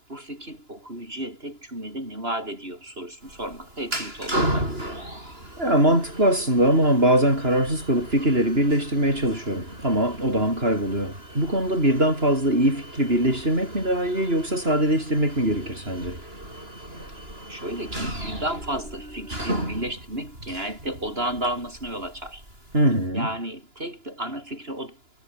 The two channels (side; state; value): left; late; 2.9 ms